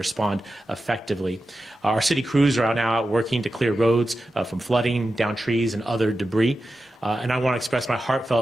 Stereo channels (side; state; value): both; normal; correlation 0.91